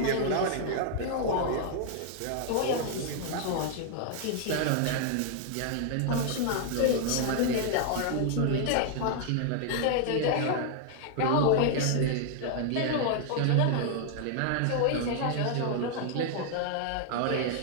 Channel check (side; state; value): both; different; correlation 0.00